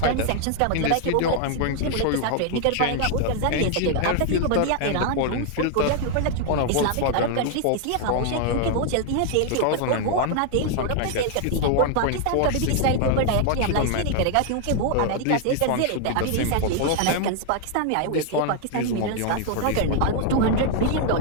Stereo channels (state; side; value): different; both; correlation 0.00